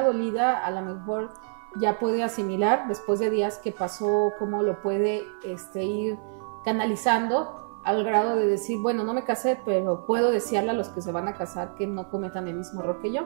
dolida a lo mejor ya puede asimilar después de días que pasó, cómo lo puede ir canalizando al grado de decir, bueno, no me casé, pero puedo desearle a los que se van a casar que no cometan el mismo error que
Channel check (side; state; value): left; silent; 56 dB below the other